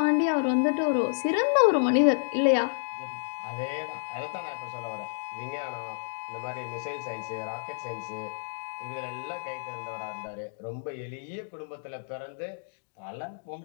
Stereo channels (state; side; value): silent; right; digital silence